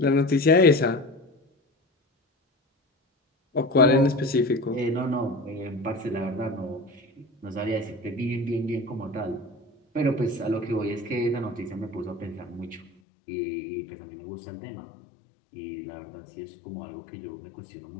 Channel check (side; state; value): right; drops out; at 12.9 s